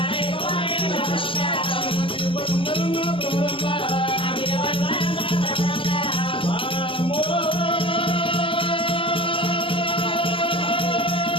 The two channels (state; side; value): late; right; 0.25 ms